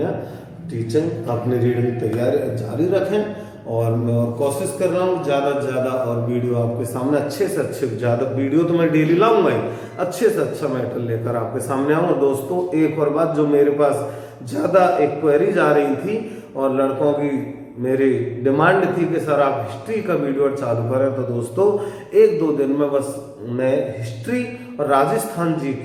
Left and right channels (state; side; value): identical; both; correlation 1.00